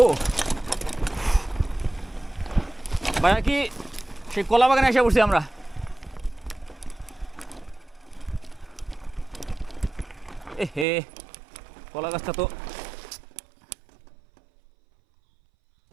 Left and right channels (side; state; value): left; drops out; at 10.9 s